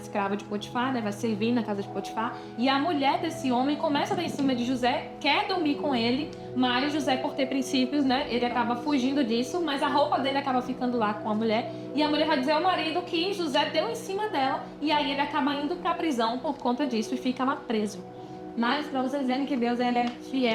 de Potifar, né? Vai servir na casa de Potifar. E a mulher desse homem começa a dar em cima de José, quer dormir com ele, mas José, por ter princípios, né? Ele acaba fugindo disso, mas a roupa dele acaba ficando lá com a mulher. E a mulher vai dizer ao marido que José deu em cima dela, e aí ele acaba indo pra prisão por conta disso e fica lá preso. Mas para vocês verem que Deus ele é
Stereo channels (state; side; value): identical; both; correlation 1.00